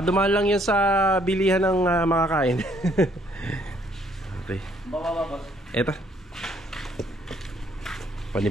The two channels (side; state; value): both; normal; correlation 0.66